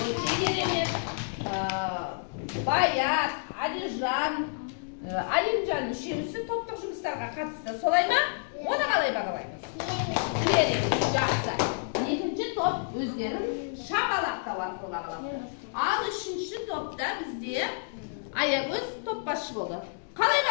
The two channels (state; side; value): silent; right; digital silence